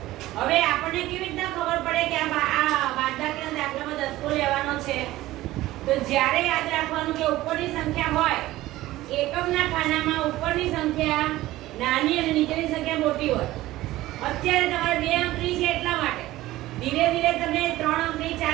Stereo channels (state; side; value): quieter; left; 16.6 dB